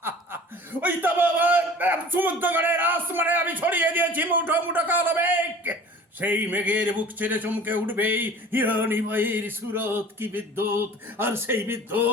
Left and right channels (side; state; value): both; normal; correlation 0.44